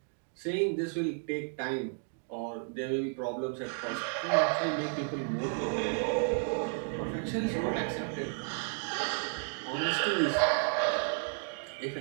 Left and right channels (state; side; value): silent; left; 56 dB below the other